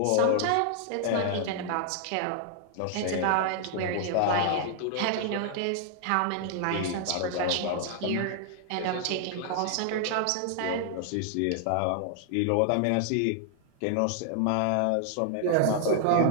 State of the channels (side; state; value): both; different; correlation 0.00